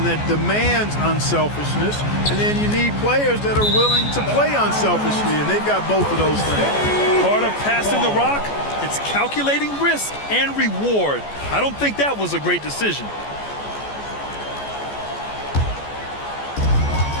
that demands unselfishness, and then you need players that are willing to play unselfishly, and they've got both of those things. Part of passing the rock, it's calculating risk and reward. I don't think that was a great decision.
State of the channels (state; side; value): late; right; 14 ms